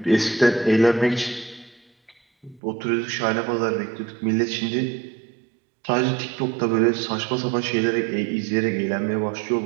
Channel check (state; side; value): drops out; left; at 2.6 s